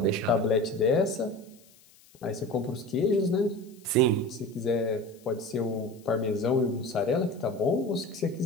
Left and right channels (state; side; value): noise; left; hiss, 27 dB below the sound